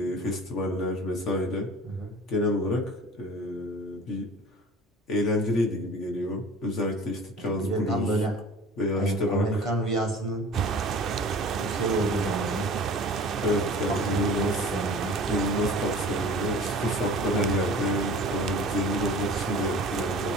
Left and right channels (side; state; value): both; normal; correlation 0.42